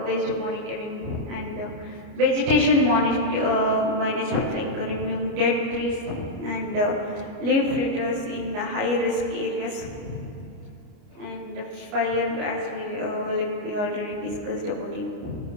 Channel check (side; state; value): left; late; 29 ms